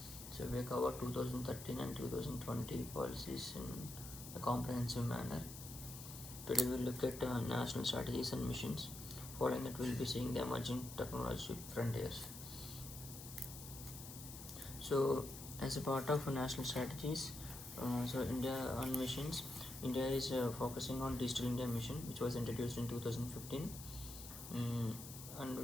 So we have covered 2013 and 2020 policies in a comprehensive manner. Today we'll look at national strategies and missions. Following that, we'll be seeing the emerging technology frontiers. So, as a part of national strategies, India on missions, India is focusing on Digital India mission, which was introduced in 2015,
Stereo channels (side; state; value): left; noise; hiss, 11 dB below the sound